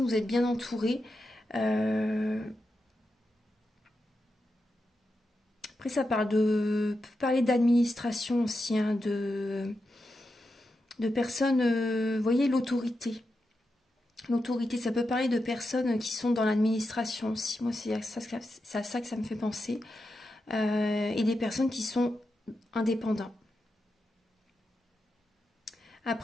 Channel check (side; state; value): both; normal; correlation 0.88